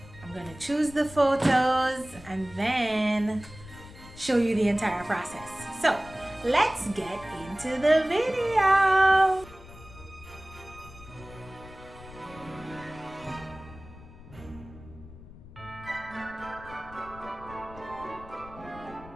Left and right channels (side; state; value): left; noise; rumble, 18 dB below the sound